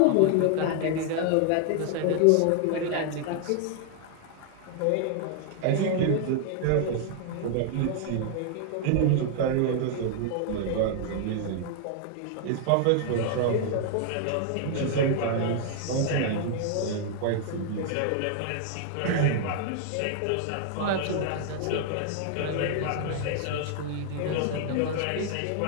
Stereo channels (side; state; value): both; different; correlation 0.00